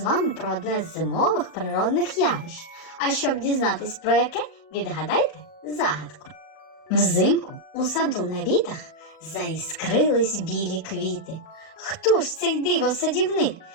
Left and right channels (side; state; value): right; late; 38 ms